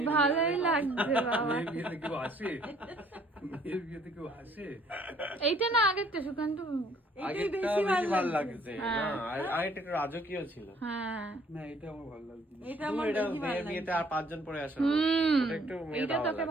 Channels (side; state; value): both; normal; correlation 0.61